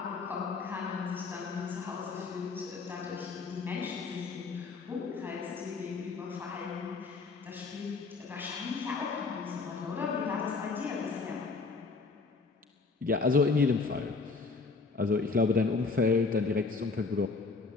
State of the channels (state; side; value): quieter; right; 4.3 dB